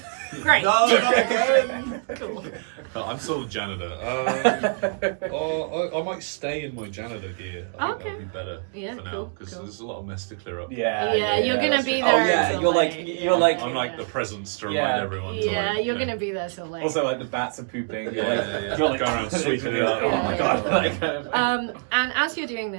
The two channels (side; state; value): left; silent; 62 dB below the other